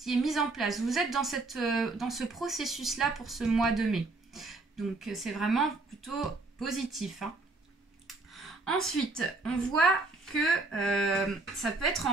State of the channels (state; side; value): quieter; left; 3.4 dB